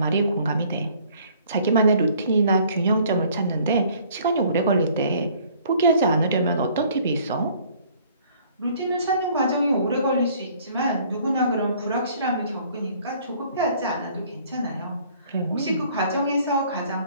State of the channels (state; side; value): inverted; both; correlation -0.57